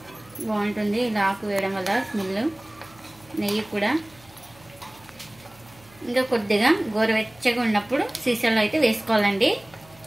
బాగుంటుంది ఇలా ఆకు వేయడం వల్ల స్మెల్. నెయ్యి కూడా ఇంకా కొద్దిగా గోరువెచ్చగా ఉన్నప్పుడు సీసాలో అయితే వేసుకోవాలండి.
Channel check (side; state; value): right; noise; hum, 26 dB below the sound